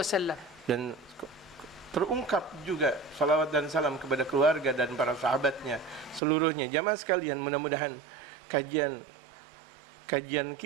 dan terungkap juga salawat dan salam kepada keluarga dan para sahabatnya seluruhnya. Jamaah sekalian, mudah-mudahan kajian kajian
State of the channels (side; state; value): left; drops out; at 6.2 s